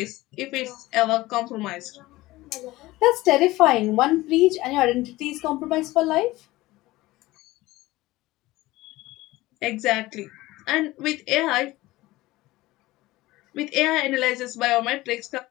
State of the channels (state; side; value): quieter; right; 18.6 dB